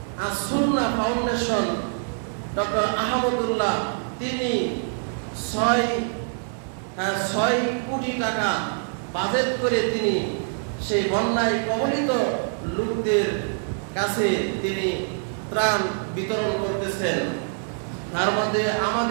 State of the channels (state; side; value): silent; left; 62 dB below the other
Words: আস-সুন্নাহ ফাউন্ডেশন ডক্টর আহমদুল্লাহ, তিনি 6 কোটি টাকা বাজেট করে তিনি সেই বন্যায় কবলিত লোকদের কাছে তিনি ত্রাণ বিতরণ করতেছেন। তার মধ্যে